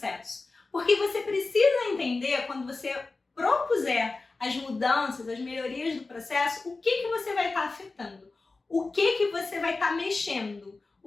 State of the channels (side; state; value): right; quieter; 3.7 dB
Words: Porque você precisa entender, quando você propuser as mudanças, as melhorias do processo, o que você vai estar afetando, o que você vai estar mexendo,